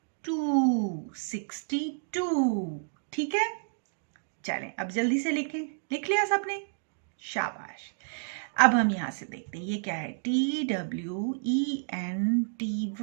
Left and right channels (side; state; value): left; silent; digital silence